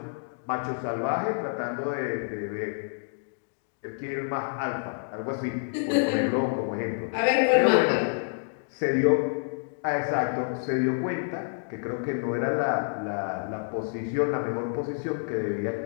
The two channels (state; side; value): silent; right; digital silence